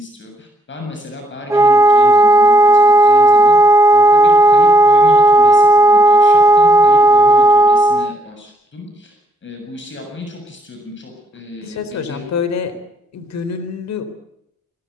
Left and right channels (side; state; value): both; normal; correlation 0.68